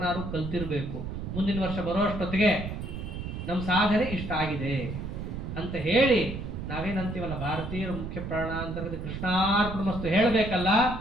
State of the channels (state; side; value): noise; right; rumble, 6 dB below the sound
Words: ಕಲ್ತಿರಬೇಕು. ಮುಂದಿನ ವರ್ಷ ಬರೋಷ್ಟೊತ್ತಿಗೆ ನಮ್ಮ ಸಾಧನೆ ಇಷ್ಟ ಆಗಿದೆ ಅಂತ ಹೇಳಿ ನಾವೇನಂತೀವಲ್ಲ, ಭಾರತೀಯರ ಮುಖ್ಯ ಪ್ರಾಣಾಂತರದ ಕೃಷ್ಣಾರ್ಪಣಮಸ್ತು ಹೇಳಬೇಕಲ್ಲ,